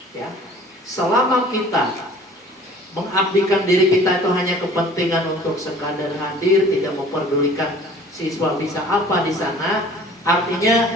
Ya, selama kita mengabdikan diri kita itu hanya kepentingan untuk sekadar hadir, tidak memperdulikan siswa bisa apa di sana,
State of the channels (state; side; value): normal; both; correlation 0.49